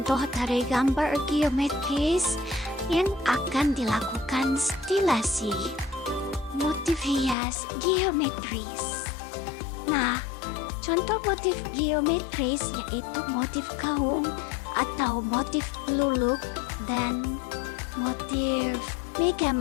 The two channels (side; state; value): right; drops out; at 7.4 s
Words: dari gambar geometris yang akan dilakukan stilasi motif hias geometris. Nah, contoh motif geometris yaitu motif gaung atau motif luluk dan motif